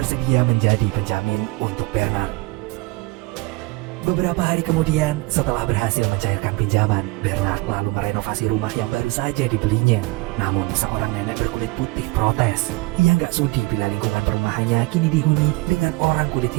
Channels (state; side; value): quieter; left; 22.9 dB